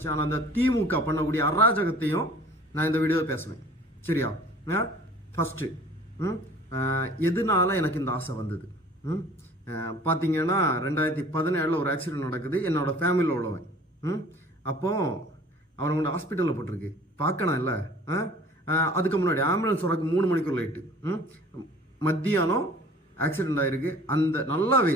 ஆனால் அந்த திமுக பண்ணக்கூடிய அராஜகத்தையும் நான் இந்த வீடியோவில் பேசுவேன். சரியா? ஃபஸ்ட்டு எதனால எனக்கு இந்த ஆசை வந்தது பார்த்தீங்கன்னா, 2017 ஒரு ஆக்சிடென்ட் நடக்குது. என்னோட ஃபேமிலியில் உள்ளவன். அப்போது அவனை கொண்டு ஹாஸ்பிட்டலில் போட்டிருக்கு. பார்க்கணும் இல்லை. அதுக்கு முன்னாடி ஆம்புலன்ஸ் வரக்கு 3 மணிக்கு லைட்டு. மத்தியானம் ஆக்சிடென்ட் ஆகிருக்கு. அந்த நல்லா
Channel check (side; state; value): both; normal; correlation 0.49